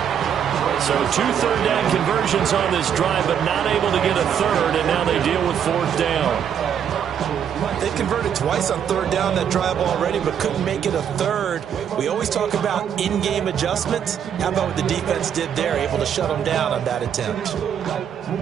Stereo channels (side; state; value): left; quieter; 8.5 dB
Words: So 2 third down conversions on this drive, but not able to get a 3rd, and now they deal with 4th down. They converted twice on 3rd down that drive already, but couldn't make it a 3rd. We always talk about in-game adjustments. How about what the defense did there, able to shut them down on that attempt?